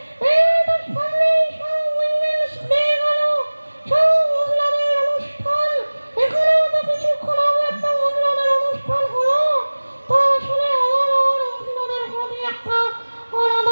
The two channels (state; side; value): inverted; both; correlation -1.00